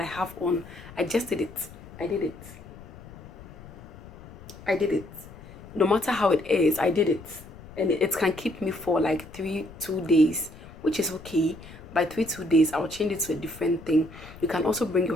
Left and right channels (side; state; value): left; noise; rumble, 17 dB below the sound